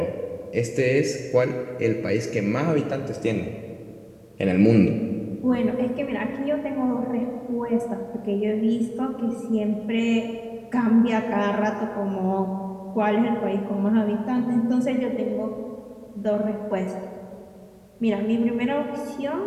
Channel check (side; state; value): both; identical; correlation 1.00